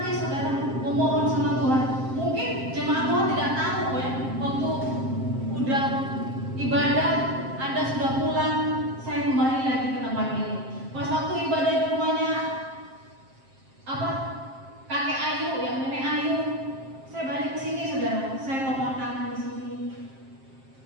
saudara, memohon sama Tuhan. Mungkin jemaat Tuhan tidak tahu ya, waktu udah ibadah, Anda sudah pulang, saya kembali lagi ke tempat ini. Pas waktu ibadah di rumahnya kakek Ayu, yang nenek Ayu, saya balik ke sini saudara, saya topang tangan di sini,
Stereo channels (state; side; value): late; left; 7.5 ms